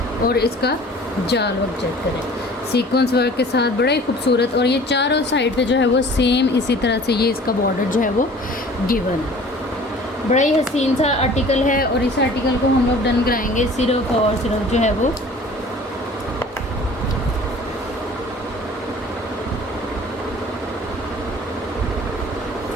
और इसका जाल वर्क चेक करें सीक्वेंस वर्क के साथ, बड़ा ही खूबसूरत। और ये चारों साइड पे जो है वो सेम इसी तरह से ये इसका बॉर्डर जो है वो गिवन है। बड़ा ही हसीन सा आर्टिकल है, और इस आर्टिकल को हम लोग डन कराएंगे सिर्फ और सिर्फ जो है वो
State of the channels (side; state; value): both; normal; correlation 0.47